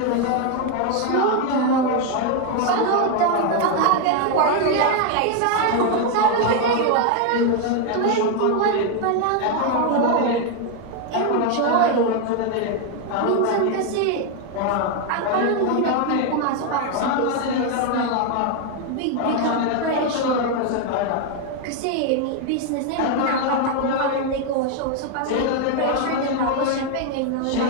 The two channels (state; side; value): different; both; correlation 0.01